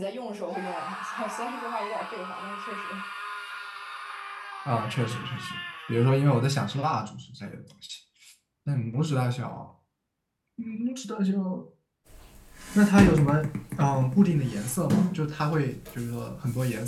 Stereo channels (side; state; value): both; identical; correlation 1.00